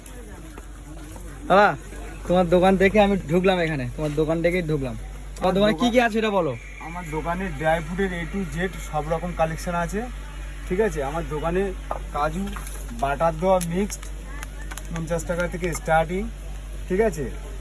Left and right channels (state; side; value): identical; both; correlation 1.00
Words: দাদা তোমার দোকান দেখে আমি ঢুকলাম, এখানে তোমার দোকান দেখেই ঢুকলাম। তোমার দোকানে কি কি আছে এটা বলো। আমার দোকানে ড্রাই ফ্রুটের A to Z সব রকম কালেকশন আছে, ঠিক আছে। আমার দোকানে কাজু বাটার দেওয়া মিক্সড 50 টাকা থেকে স্টার্টিং, ঠিক আছে।